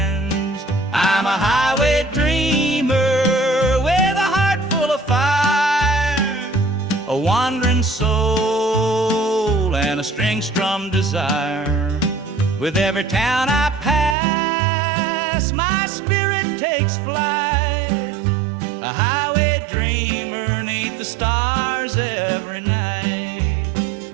I'm a highway dreamer with a heart full of fire, a wandering soul and a string-strummed desire. With every town I pass, my spirit takes flight, a highway dreamer 'neath the stars every night.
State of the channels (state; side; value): drops out; left; at 14.2 s